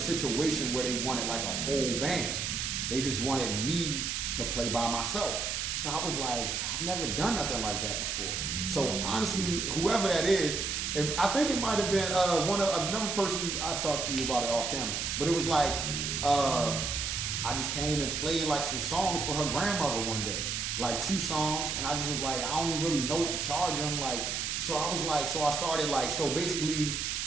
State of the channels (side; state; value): right; noise; hiss, 1 dB below the sound